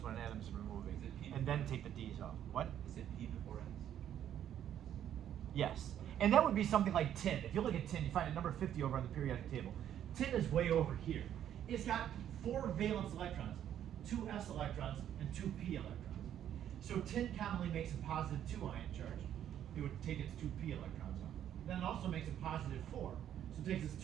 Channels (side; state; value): left; quieter; 10.4 dB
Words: when an atom is removing, Is it P and then take the Ds off. What? Is it P before S? Yes. And that would be something like tin. If you look at tin, you find a number 50 over on the periodic table. Tin is way over here. It's got 4 valence electrons, 2 S electrons, and 2 P electrons. So tin commonly makes a positive 2 ion charge. It would take its 2 P electrons off. Then it also makes a positive 4. So it takes its